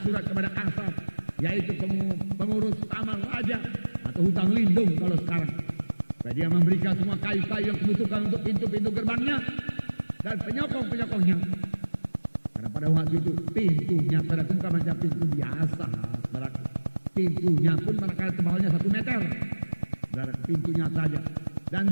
surat kepada Kasar, yaitu pengurus taman raja atau hutang lindung kalau sekarang. Supaya dia memberikan semua kayu-kayu yang dibutuhkan untuk pintu-pintu gerbangnya dan penyokong-penyokongnya. Karena pada waktu itu pintunya bukan macam pintu biasa, pintunya pun manakala tebalnya 1 meter, dari pintunya saja, dan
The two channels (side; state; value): both; inverted; correlation -1.00